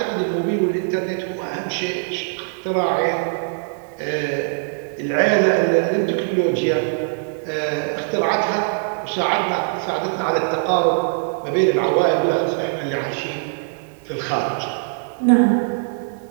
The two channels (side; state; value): left; silent; digital silence